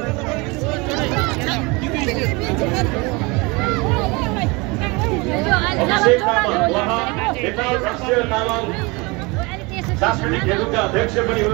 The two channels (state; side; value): quieter; left; 26.2 dB